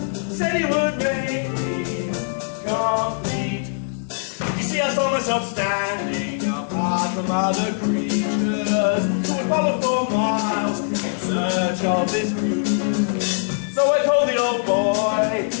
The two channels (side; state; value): right; silent; digital silence